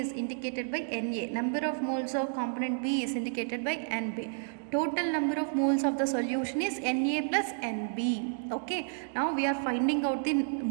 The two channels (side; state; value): left; silent; digital silence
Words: indicated by Na. Number of moles of component B is indicated by Nb. Total number of moles of the solution is Na plus Nb. Okay, now we are finding out the